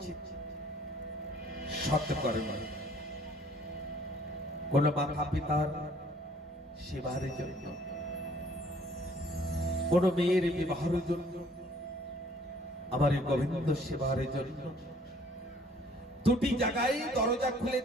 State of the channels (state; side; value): normal; both; correlation 0.59